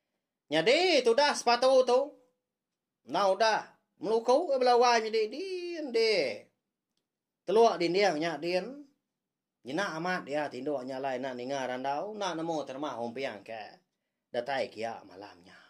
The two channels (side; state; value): both; identical; correlation 1.00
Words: Jadi tu dah sepatu tu. Nah udah melukau belawai jadi di. Teluak di dia nya dia Jina amat ya tindo nyalai nak ninga randau nak namo terma hompiang ke datai kia malamnya.